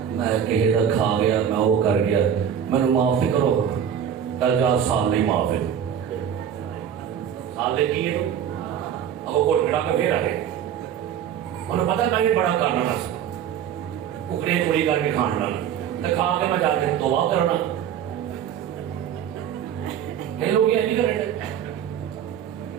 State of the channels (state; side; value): quieter; left; 8.9 dB